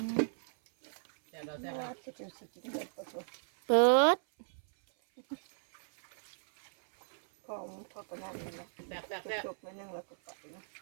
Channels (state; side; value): silent; left; 54 dB below the other